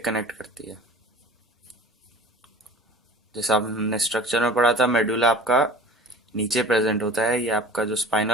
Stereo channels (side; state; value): both; normal; correlation 0.42